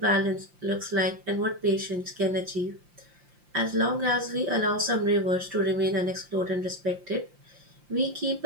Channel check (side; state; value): left; late; 5.7 ms